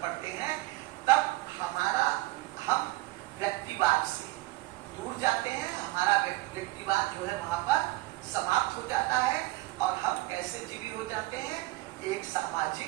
पड़ते हैं तब हम व्यक्तिवाद से दूर जाते हैं, हमारा व्यक्तिवाद जो है वहां पर समाप्त हो जाता है और हम कैसे एक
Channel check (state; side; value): quieter; left; 20.0 dB